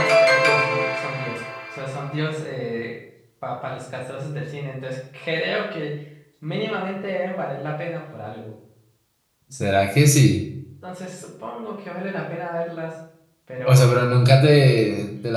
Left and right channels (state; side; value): identical; both; correlation 1.00